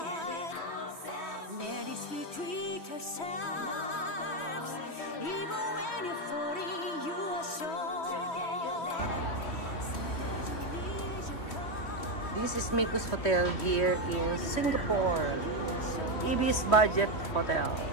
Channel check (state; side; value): late; right; 3.1 ms